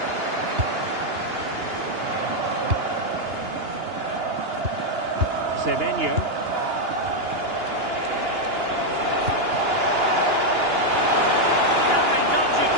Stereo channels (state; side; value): late; left; 2.9 ms